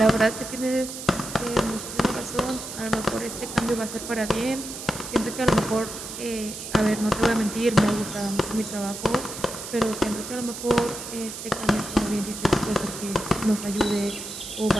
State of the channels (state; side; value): noise; right; hiss, 9 dB below the sound